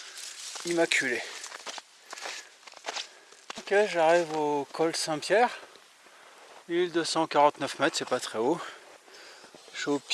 immaculé. Ok, j'arrive au col Saint-Pierre. 1249 mètres, c'est pas très haut. Je suis au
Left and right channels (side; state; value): both; identical; correlation 1.00